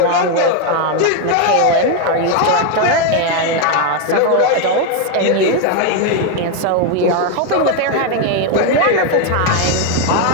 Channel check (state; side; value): different; both; correlation 0.01